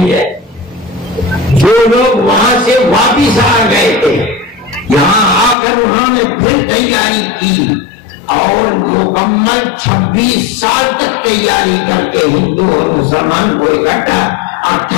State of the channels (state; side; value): drops out; right; at 5.6 s